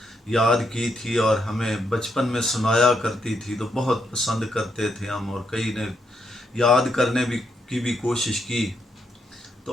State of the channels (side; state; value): both; normal; correlation 0.78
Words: یاد کی تھی اور ہمیں بچپن میں سنایا کرتی تھی، تو بہت پسند کرتے تھے ہم، اور کئی نے یاد کرنے کی بھی کوشش کی۔